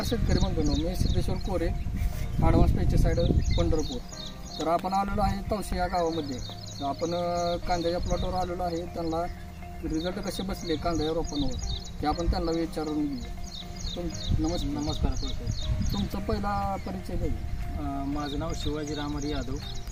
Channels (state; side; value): identical; both; correlation 1.00